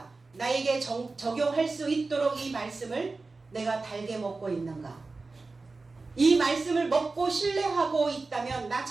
나에게 적용할 수 있도록 이 말씀을 내가 달게 먹고 있는가? 이 말씀을 먹고 신뢰하고 있다면 나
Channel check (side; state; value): left; quieter; 3.7 dB